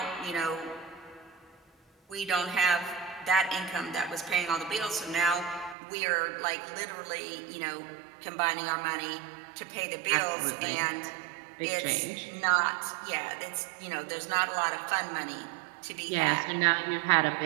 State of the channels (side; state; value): left; drops out; at 5.8 s